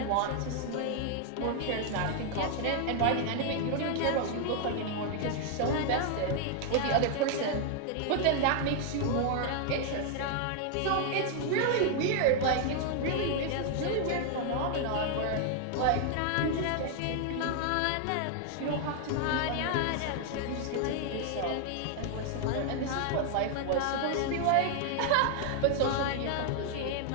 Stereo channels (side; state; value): both; different; correlation 0.00